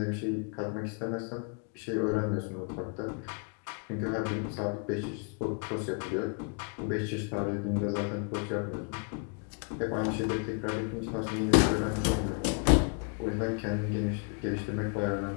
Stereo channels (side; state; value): right; quieter; 39.0 dB